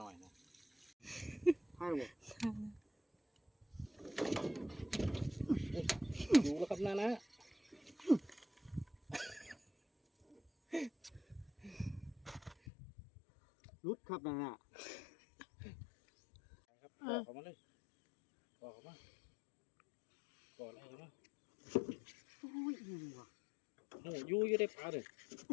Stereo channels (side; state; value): right; drops out; at 12.6 s